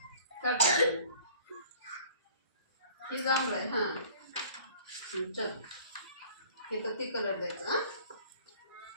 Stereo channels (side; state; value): both; inverted; correlation -0.49